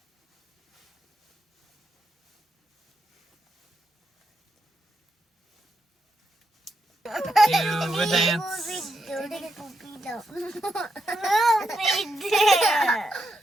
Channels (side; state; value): both; normal; correlation 0.83